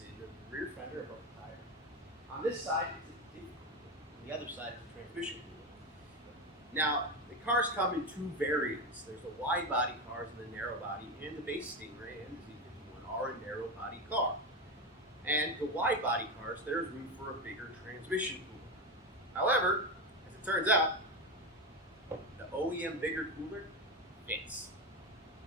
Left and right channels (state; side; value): normal; both; correlation 0.16